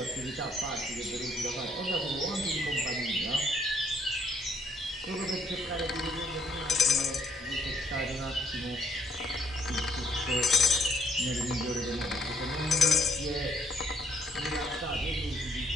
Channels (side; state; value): both; normal; correlation 0.69